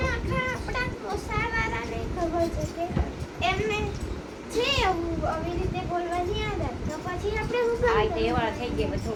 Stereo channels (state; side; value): identical; both; correlation 1.00